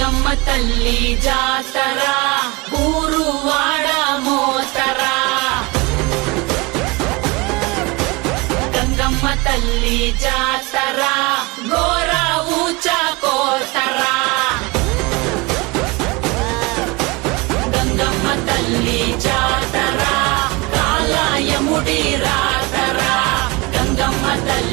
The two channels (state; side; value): quieter; left; 25.4 dB